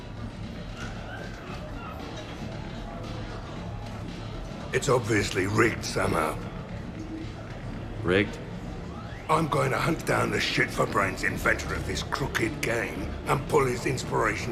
It's obviously rigged somehow. Rigged? I'm going to hunt down the shit-for-brains inventor of this crooked game and pull his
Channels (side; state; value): both; identical; correlation 1.00